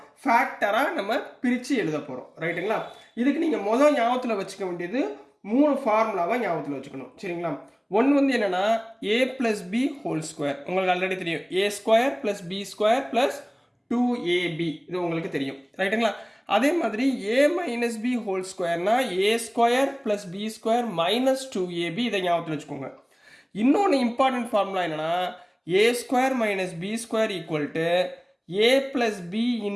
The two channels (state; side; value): identical; both; correlation 1.00